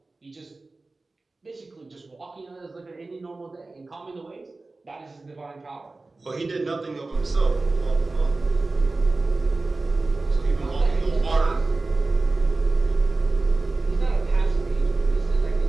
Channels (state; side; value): quieter; left; 3.4 dB